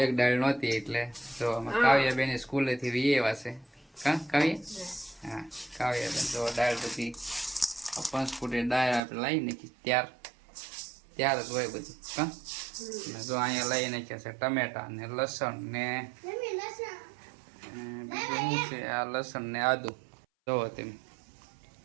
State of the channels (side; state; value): left; drops out; at 9.0 s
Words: એક દાળ નહોતી, એટલે જો અમે કાવ્યાબેન સ્કૂલેથી વહી આવ્યા છે. હા કાવ્ય? હા કાવ્યાબેન તો દાળ બધી 5 ફૂટની દાળ આપણે લાવી નાખી. ત્યાર જ હોય બધું. હા, જો અહીંયા લઈ નાખ્યા છે ટમેટા ને લસણ ને બીજું શું છે, આ લસણ ને આદુ. જોવો તમે